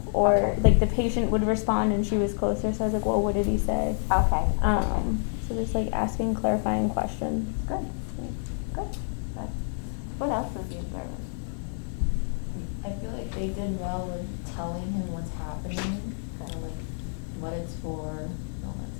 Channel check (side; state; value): right; silent; digital silence